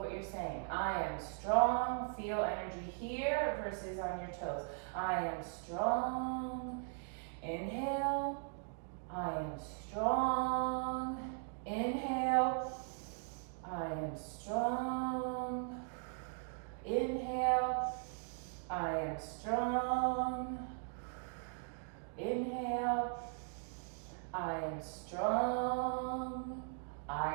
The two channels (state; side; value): silent; left; 52 dB below the other